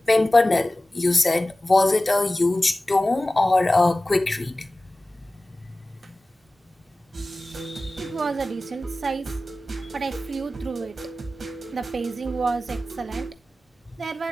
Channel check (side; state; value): both; normal; correlation 0.96